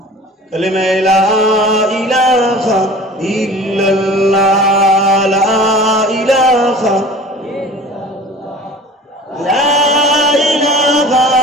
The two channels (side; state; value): both; normal; correlation 0.42